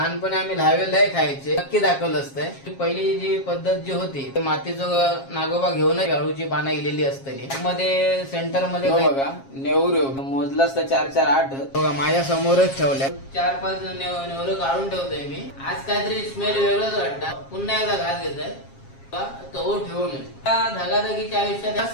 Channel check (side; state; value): right; late; 7.4 ms